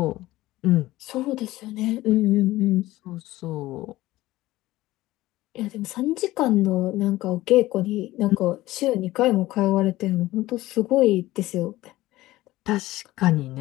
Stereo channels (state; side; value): quieter; right; 17.1 dB